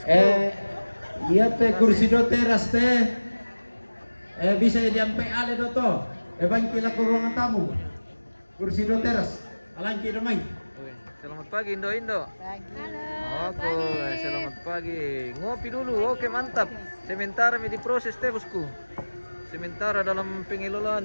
Iya teh, kursi do teras teh. Bisa diampe ale do to. Bangkila ke ruangan tamu. Kursi do teras. Alangki do main. Selamat pagi, Indo. Pagi. Oke, selamat pagi. Ngopi dulu. Oke, mantap. Sementara diproses teh, bosku. Sementara dalam pengelolaan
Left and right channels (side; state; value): both; inverted; correlation -1.00